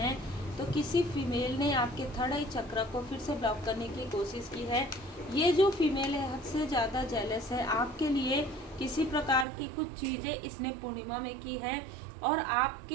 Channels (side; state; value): left; drops out; at 9.5 s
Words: तो किसी फीमेल ने आपके थर्ड आई चक्र को फिर से ब्लॉक करने की कोशिश की है। ये जो फीमेल है हद से ज़्यादा जेलस है आपके लिए। किसी प्रकार की कुछ चीज़ें इसने पूर्णिमा में की है और